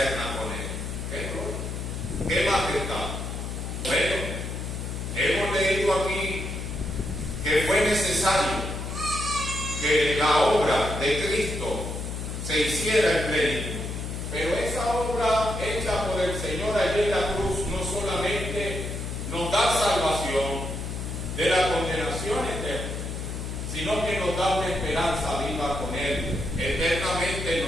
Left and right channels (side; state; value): left; noise; hum, 5 dB below the sound